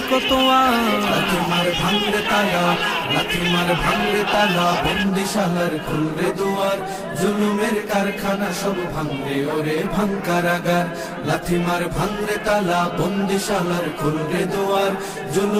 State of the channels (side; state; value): both; identical; correlation 1.00